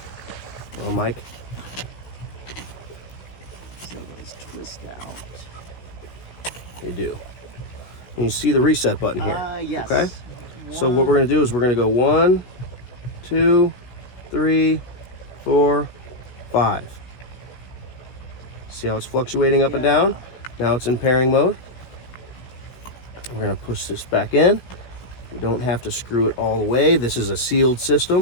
Well, Mike. So those twist out. They do. And you see the reset button here. Yes. Okay. So what we're going to do is we're going to go 1, 2, 3, 4, 5. See how it's fluctuating up and down? Now it's in pairing mode. We're going to push this back in. We don't have to screw it all the way. This is a sealed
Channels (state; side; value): late; right; 16 ms